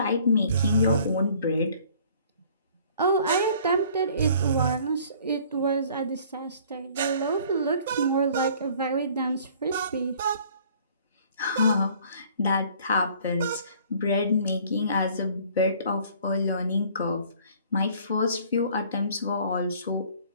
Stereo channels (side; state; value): both; inverted; correlation -0.54